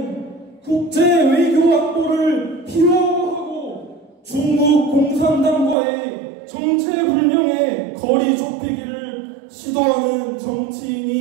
국제 외교 안보를 희화화하고 중국 공산당과의 정체불명의 거리 좁히기를 지도하는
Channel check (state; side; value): drops out; left; at 5.8 s